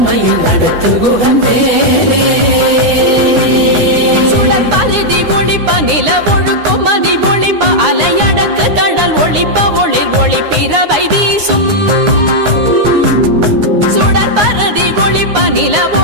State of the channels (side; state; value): left; late; 9.6 ms